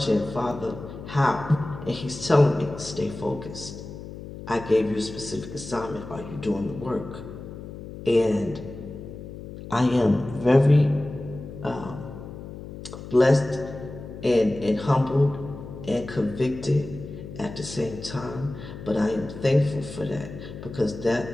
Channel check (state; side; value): noise; left; hum, 12 dB below the sound